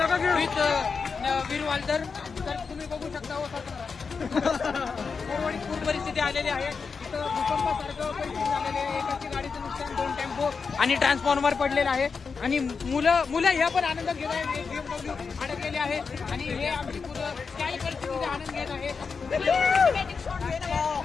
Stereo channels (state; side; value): quieter; right; 5.3 dB